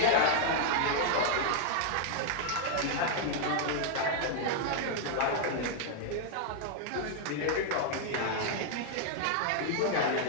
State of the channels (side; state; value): both; different; correlation -0.01